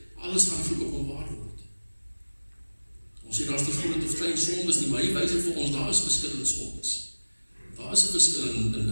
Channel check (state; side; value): inverted; both; correlation -1.00